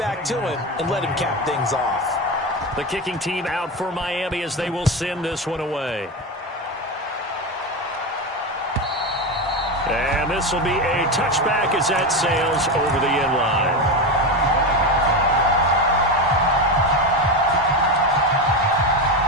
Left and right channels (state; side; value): normal; both; correlation 0.17